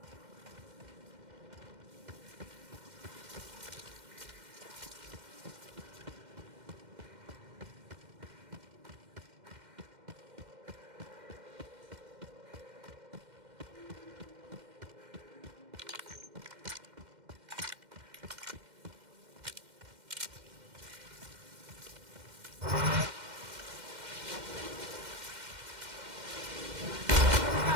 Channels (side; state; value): left; late; 2.1 ms